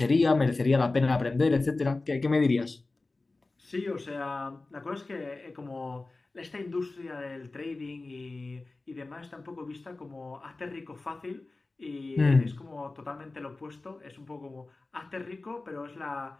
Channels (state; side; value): quieter; right; 3.3 dB